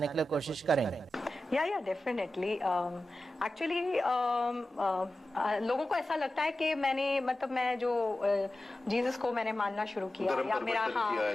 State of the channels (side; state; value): both; normal; correlation 0.94